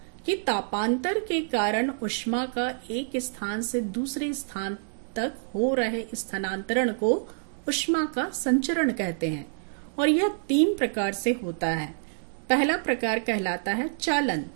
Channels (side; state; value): left; silent; digital silence